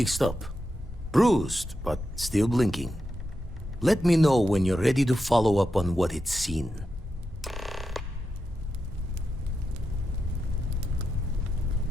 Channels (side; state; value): both; normal; correlation 0.88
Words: up. Bruised, but still blinking. Let me know when you're ready to follow up on what it's seen.